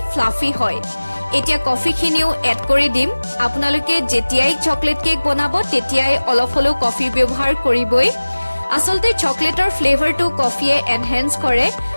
ফ্লাফি হয় এতিয়া কফিখিনিও এড কৰি দিম আপোনালোকে যেতিয়াই চকলেট কেক বনাব তেতিয়াই অলপ হলেও কফি ব্যৱহাৰ কৰিবই আসলতে চকলেটৰ ফ্লেভাৰটো কফিয়ে এনহেন্স কৰে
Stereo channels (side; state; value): both; inverted; correlation -1.00